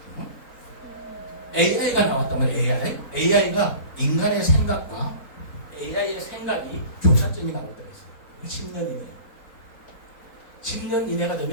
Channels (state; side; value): late; right; 4.1 ms